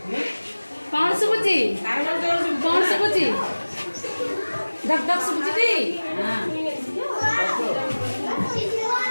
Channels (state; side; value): inverted; both; correlation -1.00